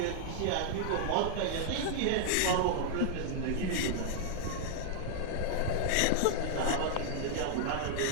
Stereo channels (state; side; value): different; both; correlation -0.01